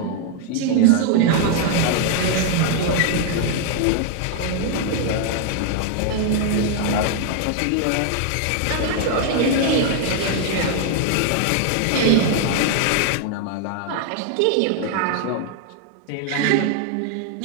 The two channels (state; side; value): different; both; correlation 0.00